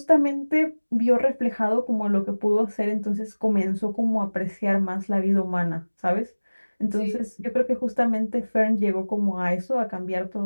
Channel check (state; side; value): inverted; both; correlation -1.00